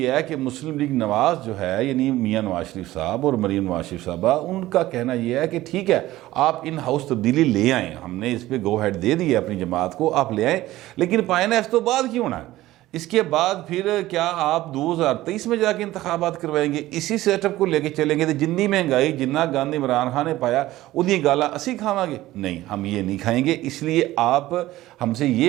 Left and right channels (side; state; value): left; quieter; 16.2 dB